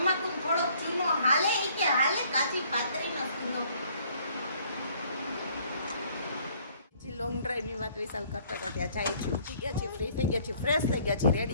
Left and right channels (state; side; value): inverted; both; correlation -0.60